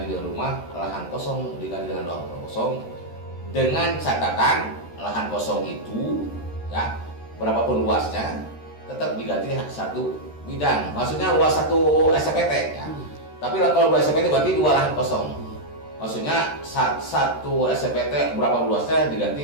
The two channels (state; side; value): late; right; 13 ms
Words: dengan rumah, lahan kosong diganti dengan lahan kosong, dengan catatan lahan kosong itu, ya, berapapun luasnya tetap diganti satu bidang. Maksudnya luas satu SPT, ya. Tapi kalau 2 SPT berarti 2 lahan kosong. Maksudnya satu SPT berapa luasnya